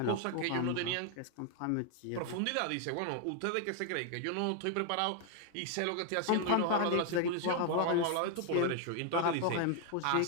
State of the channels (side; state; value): both; different; correlation 0.00